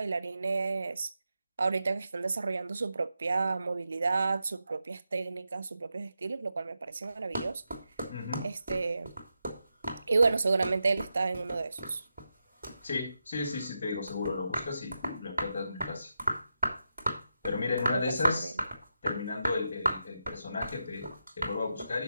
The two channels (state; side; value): inverted; both; correlation -0.88